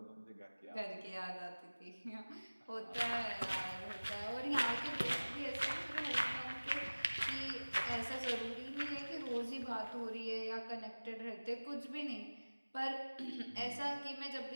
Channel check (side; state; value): both; inverted; correlation -1.00